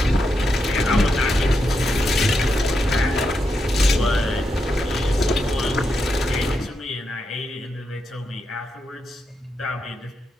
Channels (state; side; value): normal; both; correlation 0.85